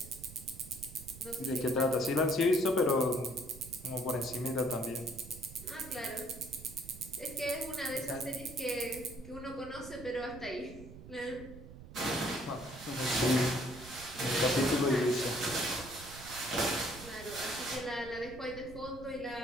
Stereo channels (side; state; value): right; noise; rumble, 15 dB below the sound